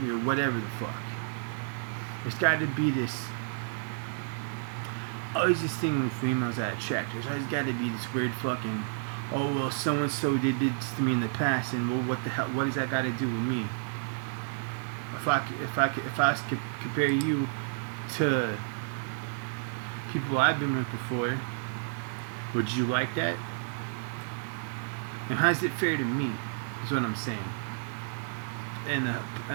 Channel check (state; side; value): silent; left; 57 dB below the other